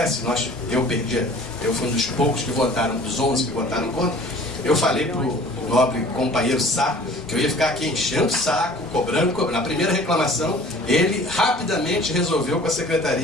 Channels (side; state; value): both; normal; correlation 0.48